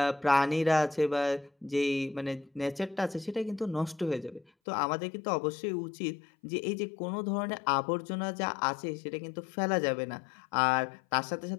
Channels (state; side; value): drops out; right; at 4.5 s